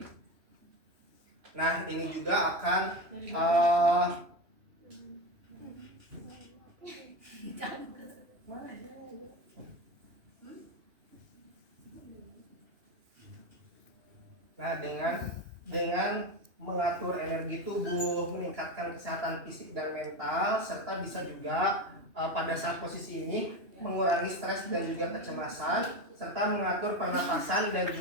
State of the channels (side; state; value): left; late; 2.8 ms